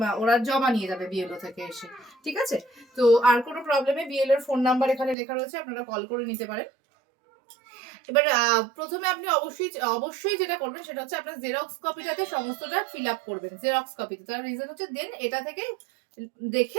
ওরা জমা নিয়ে যাবে বিএলও থেকে এসে। ঠিক আছে? তো আর কোনো প্রবলেমে বিএলওর ফোন নাম্বার এখানে লেখা রয়েছে, আপনারা কল করে নিতে পারেন। এবার প্রথমে আপনি অবশ্যই যেটা করবেন সেটা হচ্ছে আপনার জেরক্স কপিটাতে সমস্তটা ফিল আপ করবেন। জেরক্স কপিতে তার রিজন হচ্ছে দেন এটা থেকে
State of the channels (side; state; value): left; drops out; at 5.2 s